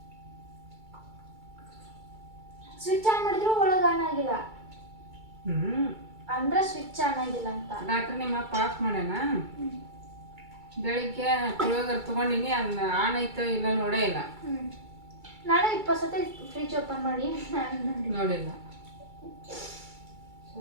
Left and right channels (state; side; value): late; left; 2.3 ms